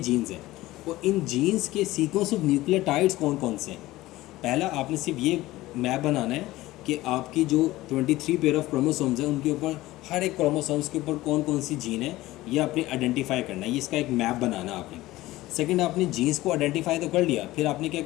हैं, और इन जीन्स के सीक्वेंस ऑफ न्यूक्लियोटाइड्स कौन कौन से हैं। पहला आपने सिर्फ ये मैप बनाना है कि आपकी जो 23 पेयर ऑफ क्रोमोसोम्स हैं उनके ऊपर हर एक क्रोमोसोम्स के ऊपर कौन कौन सी जीन है ये आपने आइडेंटिफाई करना है, ये इसका एक मैप बनाना आपने। सेकंड, आपने जीन्स को आइडेंटिफाई तो कर लिया, फिर आपने क्या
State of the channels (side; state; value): right; quieter; 17.5 dB